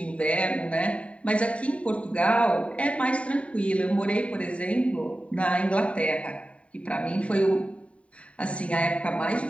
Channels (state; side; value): late; right; 0.064 ms